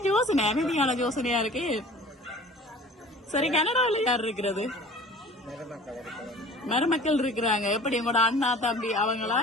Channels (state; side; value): normal; both; correlation 0.45